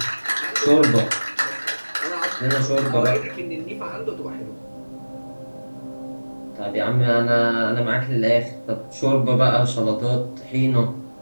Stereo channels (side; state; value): both; inverted; correlation -1.00